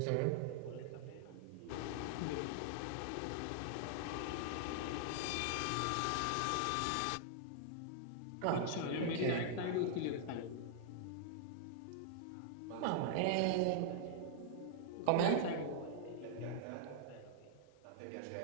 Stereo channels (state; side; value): different; both; correlation -0.01